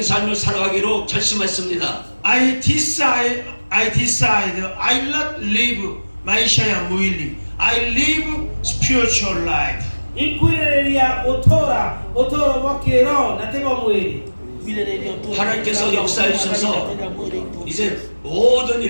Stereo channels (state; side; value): inverted; both; correlation -1.00